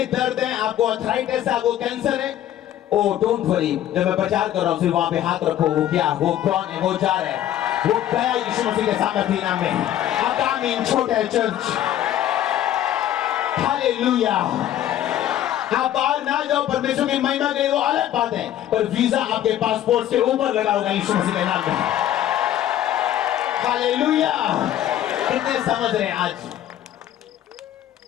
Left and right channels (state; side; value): quieter; right; 12.0 dB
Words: दर्द है, आपको अर्थराइटिस है, आपको कैंसर है, ओ डोंट वरी, जब मैं प्रचार कर रहा हूं सिर्फ वहां पे हाथ रखो, वो क्या, वो कौन है, वो जा रहा है, वो गया यीशु मसीह के सामर्थ्य नाम में। आगामी छोटा है चर्च। हालेलुया। आप बाहर ना जाओ परमेश्वर की महिमा के लिए, वो अलग बात है, पर वीजा आपके पासपोर्ट के ऊपर लगा होगा यीशु मसीह के नाम में। हालेलुया। कितने समझ रहे हैं? आज